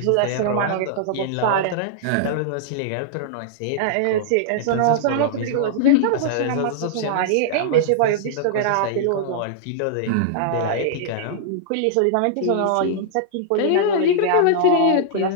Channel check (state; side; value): different; both; correlation -0.01